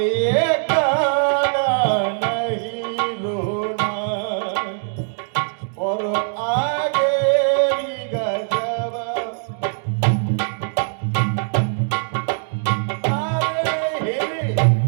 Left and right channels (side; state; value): left; silent; digital silence